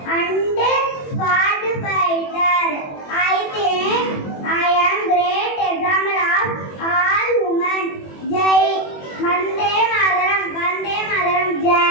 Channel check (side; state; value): right; late; 21 ms